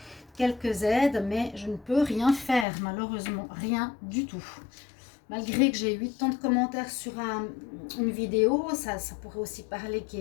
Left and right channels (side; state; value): right; drops out; at 2.7 s